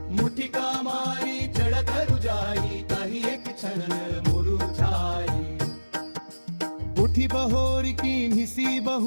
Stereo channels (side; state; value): both; inverted; correlation -1.00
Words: मुठिका मारी चढ़त रुजाई कही एक क्षण मुरुझाई उठी बहोर की निसी